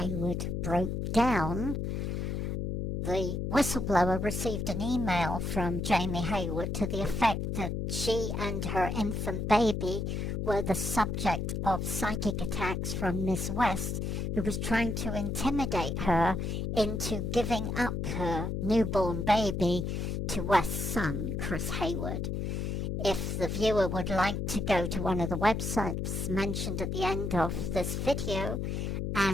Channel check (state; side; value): noise; left; hum, 2 dB below the sound